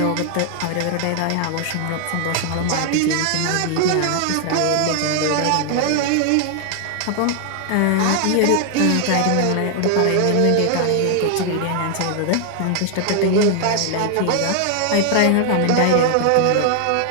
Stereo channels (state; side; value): different; both; correlation 0.00